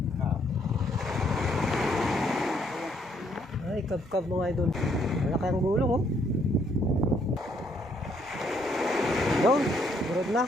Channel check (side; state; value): both; normal; correlation 0.69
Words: Ay, kab-kab mga idol. Malaki ang gulong oh. Yun, burod na.